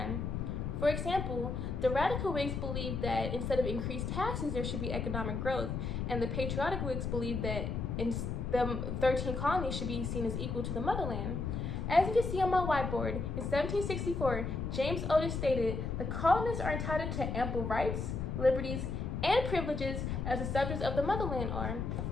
For example, the radical Whigs believed that instead of increased taxes, there should be economic growth, and the patriotic Whigs believed that the 13 colonies should be seen as equal to the motherland. As you can see on my whiteboard, in 1764, James Otis stated, "The colonists are entitled to ample rights, liberties, and privileges as the subjects of the motherland are,"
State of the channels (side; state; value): left; noise; rumble, 2 dB below the sound